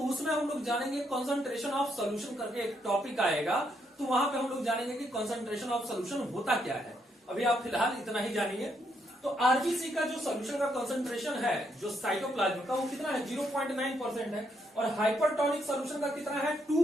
उसमें हम लोग जानेंगे कंसंट्रेशन ऑफ सॉल्यूशन करके एक टॉपिक आएगा, तो वहां पे हम लोग जानेंगे कि कंसंट्रेशन ऑफ सॉल्यूशन होता क्या है। अभी आप फिलहाल इतना ही जानिए। तो आरबीसी का जो सॉल्यूशन का कंसंट्रेशन है जो साइटोप्लाज्म का, वो कितना है? 0.9% है। और हाइपरटोनिक सॉल्यूशन का कितना है?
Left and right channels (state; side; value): normal; both; correlation 0.75